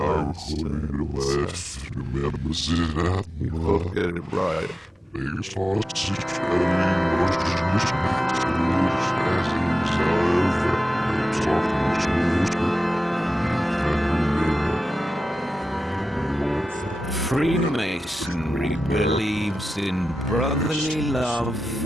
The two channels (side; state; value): both; normal; correlation 0.93